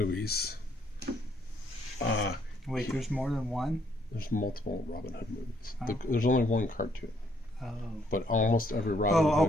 Wait, there's more than one? there's multiple Robin Hood movies. Oh. There's only one cartoon, Oh. but almost every Robin Oh,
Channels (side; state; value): both; normal; correlation 0.69